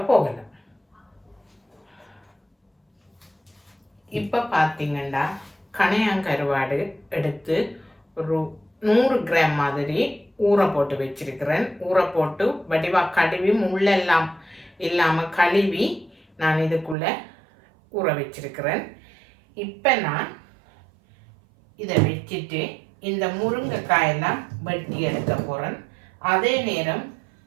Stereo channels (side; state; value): left; drops out; at 16.9 s